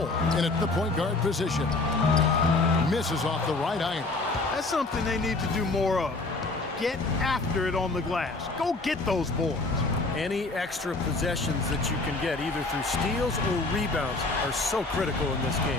in at the point guard position. Misses off the right iron. That's something they need to do more of. Get after it on the glass. Go get those boards. Any extra possessions that you can get, either through steals or rebounds, are so critical in this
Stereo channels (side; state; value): right; quieter; 3.4 dB